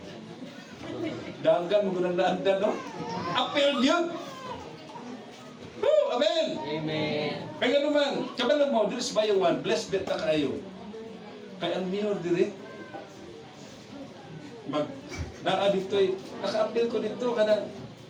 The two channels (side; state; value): both; identical; correlation 1.00